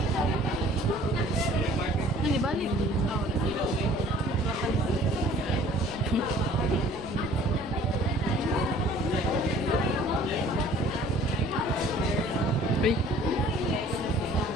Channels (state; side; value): noise; left; rumble, 16 dB below the sound